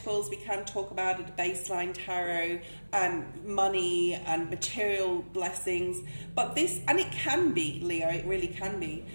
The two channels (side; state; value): both; inverted; correlation -1.00